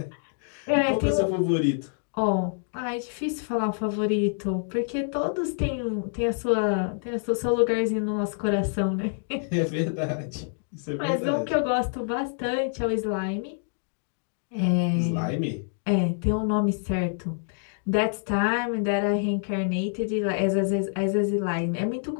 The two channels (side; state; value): right; silent; digital silence